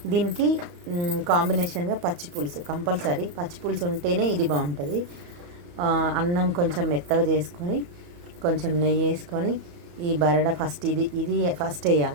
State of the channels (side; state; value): left; late; 34 ms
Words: దీనికి కాంబినేషన్గా పచ్చి పులుసు కంపల్సరీ, పచ్చి పులుసు ఉంటేనే ఇది బాగుంటుంది. అన్నం కొంచెం మెత్తగా చేసుకొని కొంచెం నెయ్యి వేసుకొని ఈ బరడా ఫస్ట్ ఇది ఫస్ట్